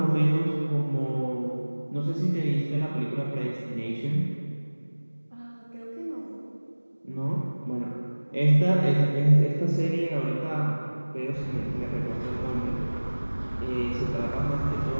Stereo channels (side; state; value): both; inverted; correlation -1.00